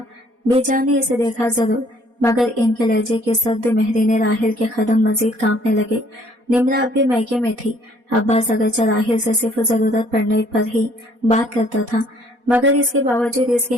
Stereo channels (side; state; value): left; late; 4.2 ms